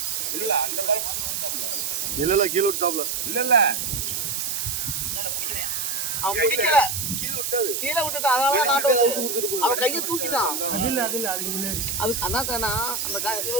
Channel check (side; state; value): right; noise; hiss, 1 dB below the sound